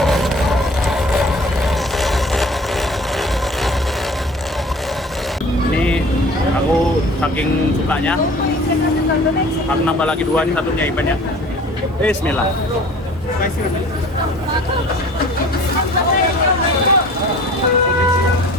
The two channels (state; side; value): normal; both; correlation 0.46